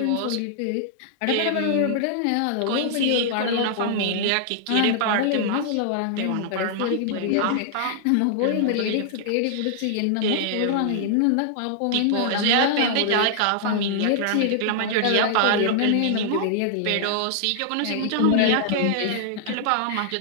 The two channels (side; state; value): both; different; correlation -0.01